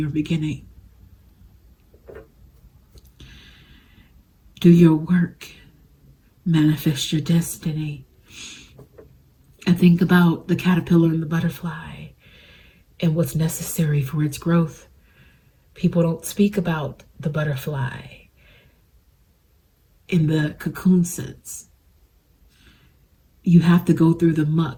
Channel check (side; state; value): both; identical; correlation 1.00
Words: beginning. Do your work. Manifest your destiny. And think about the caterpillar and the butterfly and what's necessary for its growth. People don't speak about the butterfly in the cocoon sense. You have to go through the